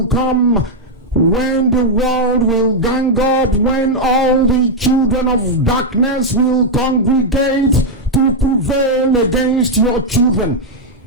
come when the world will gang up, when all the children of darkness will congregate to prevail against your children.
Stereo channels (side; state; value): both; normal; correlation -0.01